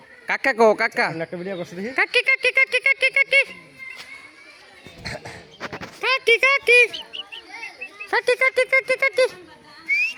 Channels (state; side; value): identical; both; correlation 1.00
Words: কাকা কো কাকা একটা ভিডিও করছ দেখি কাকি কাকি কাকি কাকি কাকি কাকি কাকি কাকি কাকি কাকি কাকি